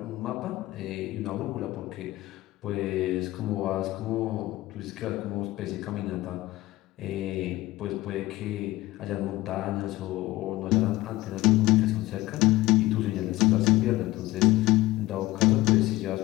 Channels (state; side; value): quieter; right; 18.1 dB